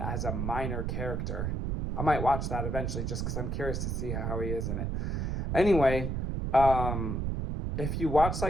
a minor character. I might watch that eventually just because I'm curious to see how he is in it. Anyway, if you watch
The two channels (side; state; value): right; noise; rumble, 1 dB below the sound